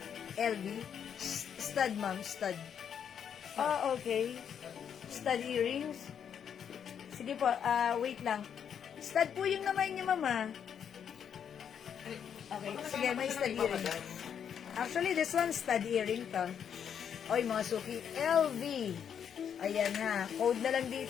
LV? Stud, ma'am, stud. Oh, okay. Stud earrings. Sige po, wait lang. Stud po yung naman niya, mama. Okay, sige, may stud earrings. Actually, this one, stud earring to. Oy, mga suki, LV. Ayan na, code na lang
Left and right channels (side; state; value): right; quieter; 8.1 dB